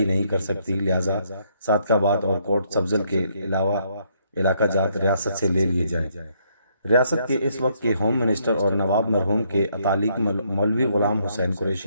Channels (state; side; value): inverted; both; correlation -0.71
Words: نہیں کر سکتی، لہذا صادق آباد اور کوٹ سبزل کے علاوہ علاقہ جات ریاست سے لے لیے جائیں۔ ریاست کے اس وقت کے ہوم منسٹر اور نواب مرحوم کے اتالق مولوی غلام حسین